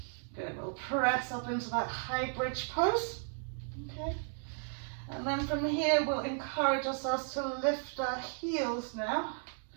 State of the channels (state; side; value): silent; left; 55 dB below the other